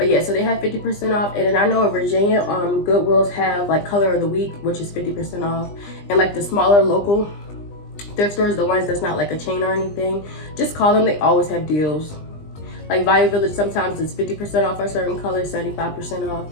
yeah, so they have 50% off. And then I know in Virginia, Goodwills have like color of the week, which is 50% off. And like the smaller local thrift stores, the ones that's not like a chain or anything, just call them. They always have deals. Like Value Village, sometimes it's 50% off a certain color, 75% off.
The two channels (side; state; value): right; late; 20 ms